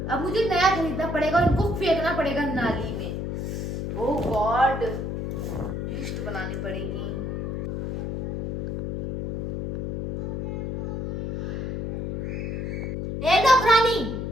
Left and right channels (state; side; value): noise; left; hum, 3 dB below the sound